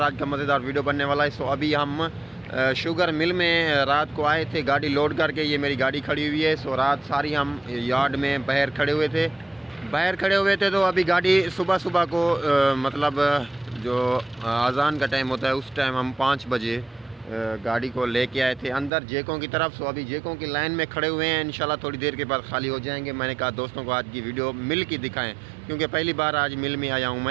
आज का मज़ेदार वीडियो बनने वाला है। सो अभी हम शुगर मिल में रात को आए थे गाड़ी लोड करके। ये मेरी गाड़ी खड़ी हुई है। सो रात सारी हम यार्ड में बाहर खड़े हुए थे। तो अभी गाड़ी सुबह सुबह को मतलब जो अज़ान का टाइम होता है उस टाइम हम 5 बजे गाड़ी को लेके आए थे अंदर जेकों की तरफ। सो अभी जेकों की लाइन में खड़े हुए हैं, इंशाल्लाह थोड़ी देर के बाद खाली हो जाएंगे। मैंने कहा दोस्तों को आज की वीडियो मिल की दिखाएं, क्योंकि पहली बार आज मिल में आया हूं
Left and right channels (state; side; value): drops out; left; at 18.9 s